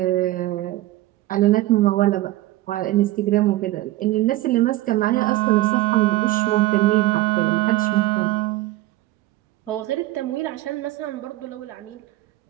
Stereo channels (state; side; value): quieter; left; 17.1 dB